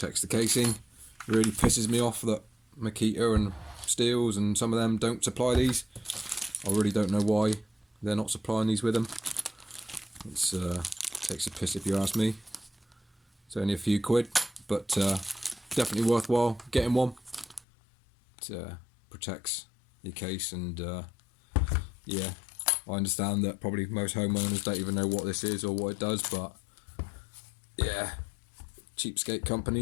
the casing. It really pisses me off that Makita and Steels and some of them don't supply these. I really don't know why they're not supplying these with them. It's takes a piss if you ask me. It's only a few quid, but definitely worthwhile getting one. It protects your case, and yeah, I understand that probably most homeowners don't even know what this is or what it does, but yeah, cheapskate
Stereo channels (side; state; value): right; drops out; at 17.7 s